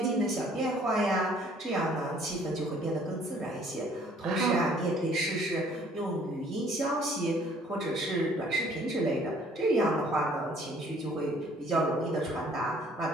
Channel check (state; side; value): normal; both; correlation 0.58